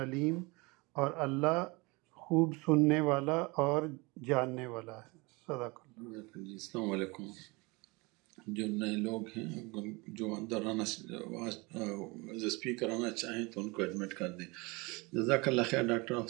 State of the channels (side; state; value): left; quieter; 26.1 dB